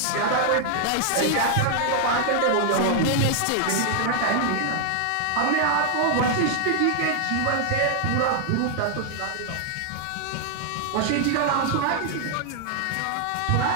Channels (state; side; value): different; both; correlation 0.00